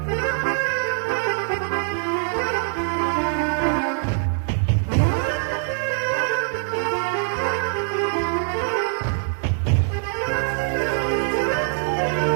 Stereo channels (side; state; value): left; silent; digital silence